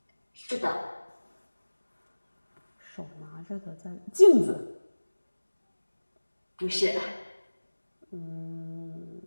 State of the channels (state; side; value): inverted; both; correlation -1.00